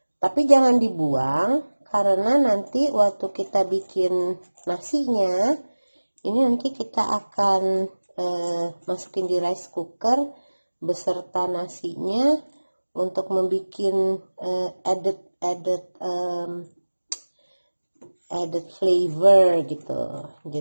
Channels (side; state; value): both; inverted; correlation -1.00